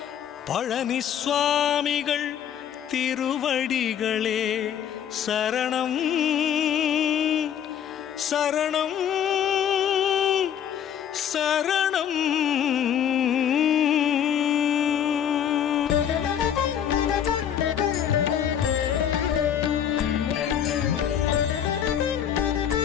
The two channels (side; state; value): right; quieter; 9.3 dB